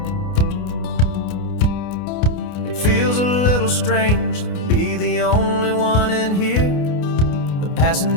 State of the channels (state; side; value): late; right; 29 ms